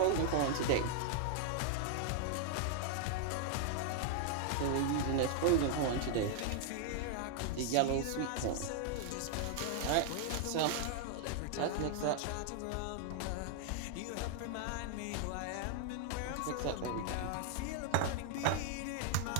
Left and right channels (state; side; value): different; both; correlation 0.00